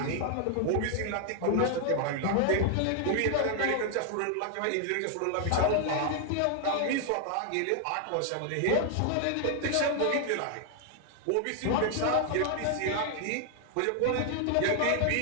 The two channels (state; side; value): different; both; correlation 0.00